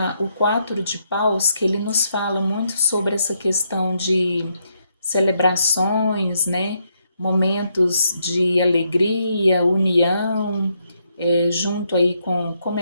o 4 de paus, que ele nos fala muito sobre essa questão de celebrações, né? Momentos de alegria, união, junto aí com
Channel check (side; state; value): both; inverted; correlation -0.77